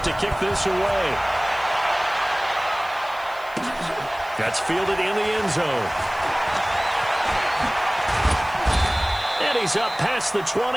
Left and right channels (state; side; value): noise; right; hiss, 24 dB below the sound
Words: to kick this away. That's fielded in the end zone. And he's up past the